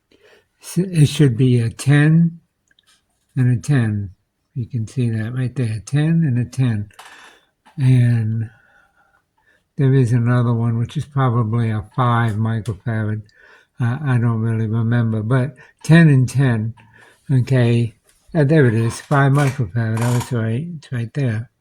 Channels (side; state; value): both; identical; correlation 1.00